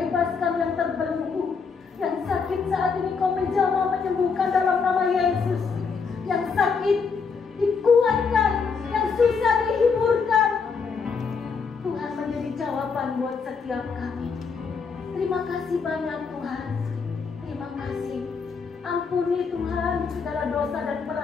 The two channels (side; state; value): right; quieter; 5.3 dB